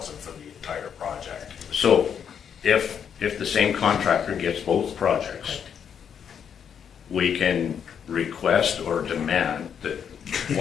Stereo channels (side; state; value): right; quieter; 7.9 dB